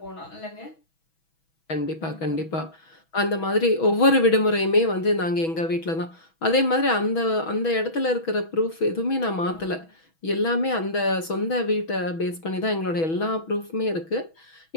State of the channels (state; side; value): late; right; 6.1 ms